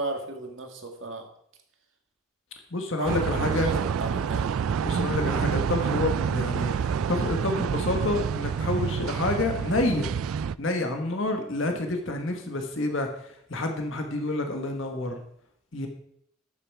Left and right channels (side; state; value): both; normal; correlation 0.39